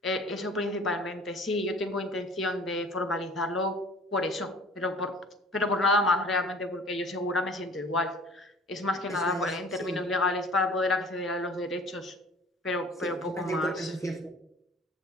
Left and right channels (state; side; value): normal; both; correlation 0.47